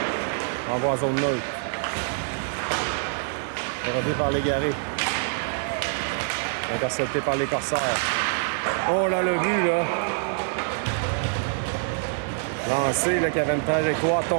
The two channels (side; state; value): left; silent; digital silence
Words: Envoie en zone neutre. Relevé par Légaré. Intercepté par les Corsaires. Oh là, le but, là. Lancé, là, qui avait une trajectoire